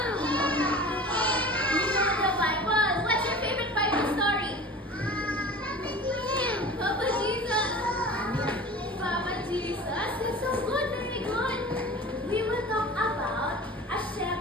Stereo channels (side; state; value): both; normal; correlation 0.38